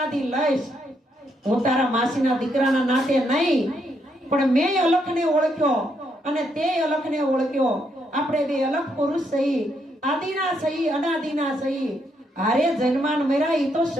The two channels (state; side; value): normal; both; correlation 0.76